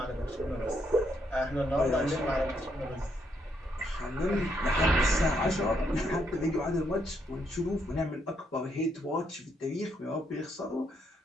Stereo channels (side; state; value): both; normal; correlation 0.75